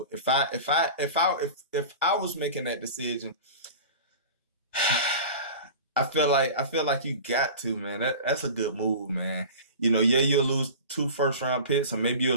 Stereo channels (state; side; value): inverted; both; correlation -0.36